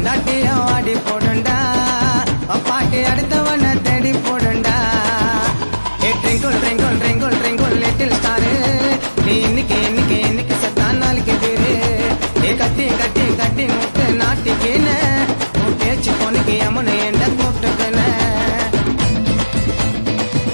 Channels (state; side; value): inverted; both; correlation -1.00